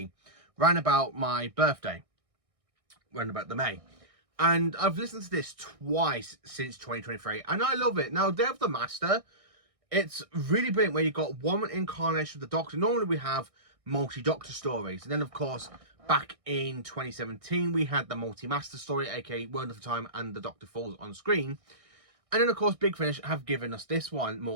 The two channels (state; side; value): late; left; 1.6 ms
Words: round about my birthday, round about the May. And I've listened to this twice since 2023, and I love it. Now, Day of the Master, it's really brilliant where you've got one incarnation of the Doctor. Normally we have multi-Doctor stories, and then of course back in 2017 we had the multi-Master story, aka Wonderful Time and the Doctor Falls on screen. And then of course Big Finish have given us this one